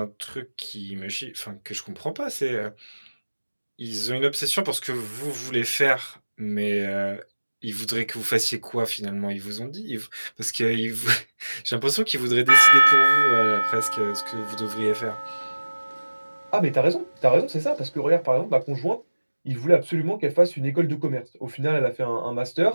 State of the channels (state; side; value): inverted; both; correlation -1.00